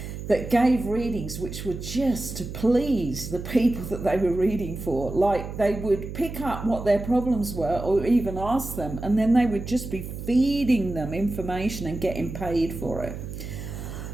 that gave readings which were just to please the people that they were reading for. Like they would pick up what their problems were or even ask them, and then they would just be feeding them information and getting paid for it.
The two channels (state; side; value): noise; right; hum, 8 dB below the sound